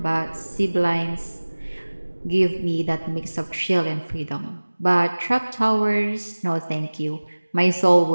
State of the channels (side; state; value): both; inverted; correlation -1.00